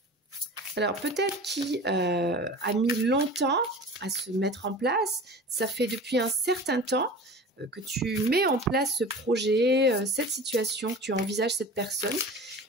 Alors peut-être qui a mis longtemps à se mettre en place, ça fait depuis un certain temps que tu mets en place ce projet, cette situation, que tu envisages cette personne.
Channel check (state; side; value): normal; both; correlation 0.37